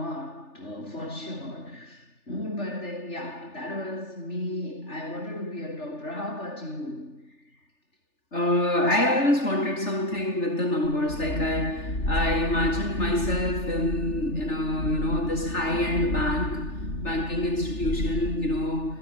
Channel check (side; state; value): right; late; 3.4 ms